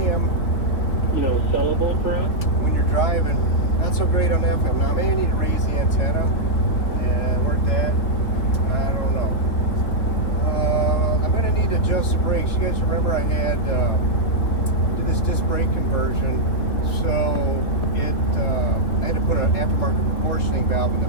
Sellable for us? When you're driving, not so great on FM. Now, I may need to raise the antenna and work that. I don't know. I'm going to need to adjust the brakes. You guys remember I had did this disc brake conversion, so I had to put an aftermarket proportioning valve in the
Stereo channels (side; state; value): right; late; 3.2 ms